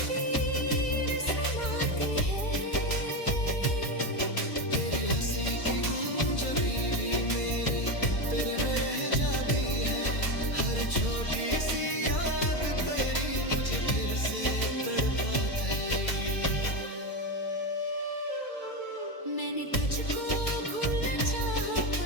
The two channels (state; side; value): late; right; 2.3 ms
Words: समाती है तेरी हंसी की गूंज अभी भी मेरे तेरे में रह जाती है हर छोटी सी याद तेरी मुझे फिर से तड़पाता है मैंने तुझको भूलना चाहा